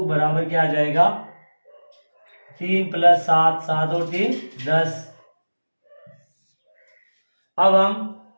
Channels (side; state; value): both; inverted; correlation -1.00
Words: बराबर क्या आ जाएगा, 3 + 7, 7 और 3 10। अब हम